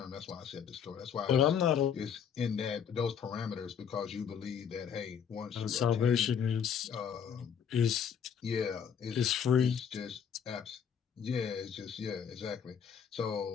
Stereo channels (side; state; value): right; quieter; 7.7 dB